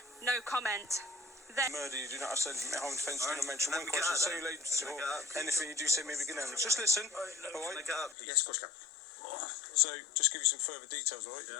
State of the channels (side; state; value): right; drops out; at 8.2 s